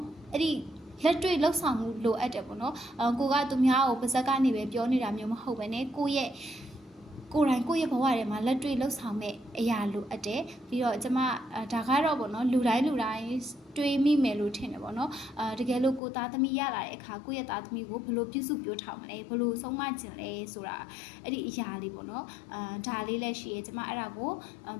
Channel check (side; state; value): right; drops out; at 16.0 s